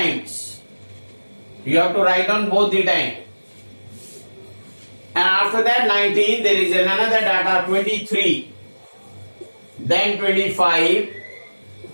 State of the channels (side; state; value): both; inverted; correlation -1.00